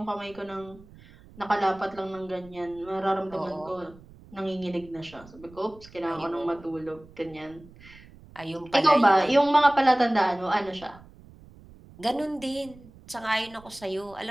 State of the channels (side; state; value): right; noise; rumble, 22 dB below the sound